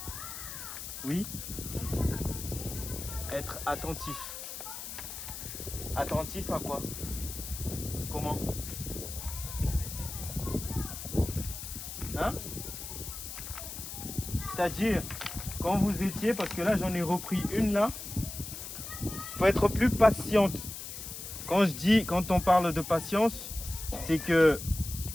Oui. Être attentif. Attentif à quoi? Comment? Hein? C'est-à-dire, quand vous étiez, parce que là j'en ai repris une là, il faut être plus patiente. Quand on parle de patience, c'est que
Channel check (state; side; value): noise; left; hiss, 9 dB below the sound